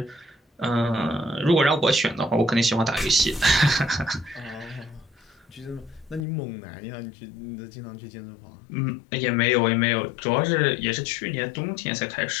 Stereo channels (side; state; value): right; drops out; at 6.2 s